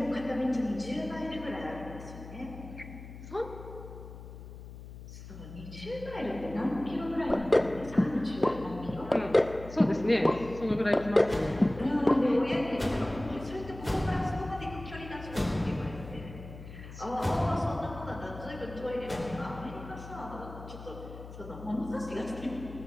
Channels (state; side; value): noise; left; hum, 13 dB below the sound